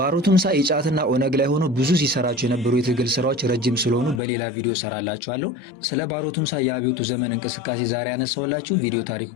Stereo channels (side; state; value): right; drops out; at 4.2 s